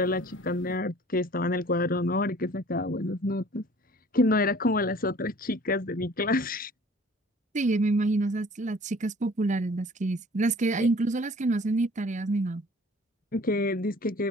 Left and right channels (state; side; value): normal; both; correlation 0.50